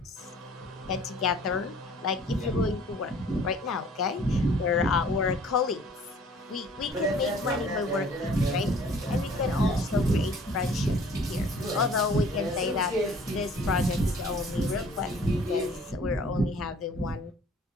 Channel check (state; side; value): normal; both; correlation 0.53